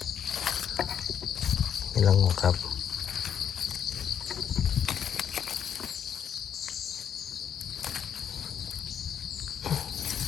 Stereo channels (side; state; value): right; quieter; 8.6 dB